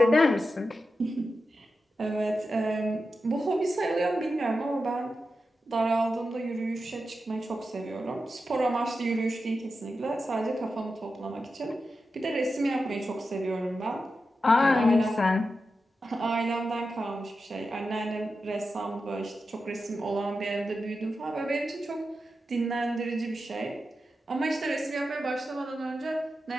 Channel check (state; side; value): normal; both; correlation 0.90